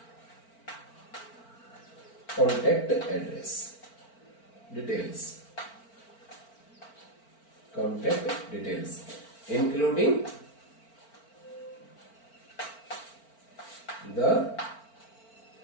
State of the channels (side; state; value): right; late; 4.4 ms